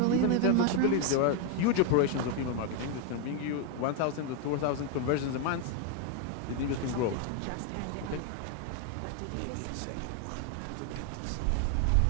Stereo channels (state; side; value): different; both; correlation 0.00